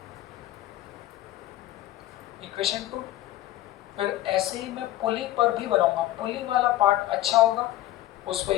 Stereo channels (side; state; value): right; quieter; 14.7 dB